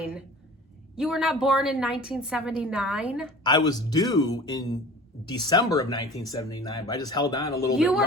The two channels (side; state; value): both; normal; correlation 0.41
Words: You were not born in 1979? I was due in December of 1979, but I just held on a little bit You